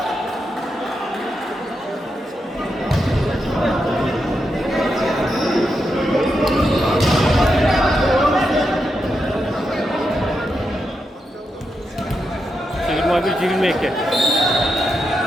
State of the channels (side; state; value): both; normal; correlation 0.85